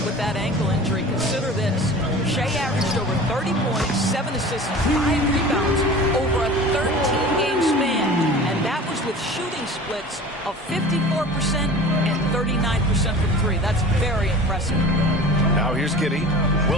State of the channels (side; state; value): both; normal; correlation 0.39